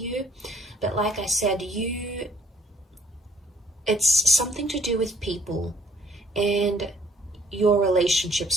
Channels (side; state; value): both; normal; correlation 0.61